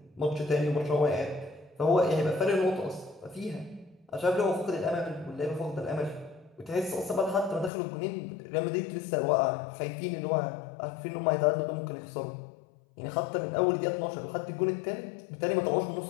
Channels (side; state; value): right; drops out; at 7.7 s